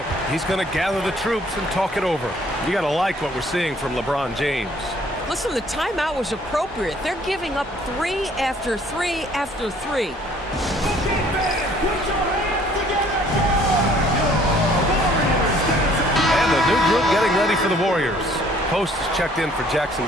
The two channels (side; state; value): both; normal; correlation 0.59